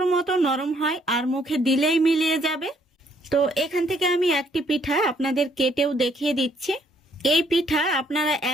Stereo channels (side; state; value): both; normal; correlation 0.67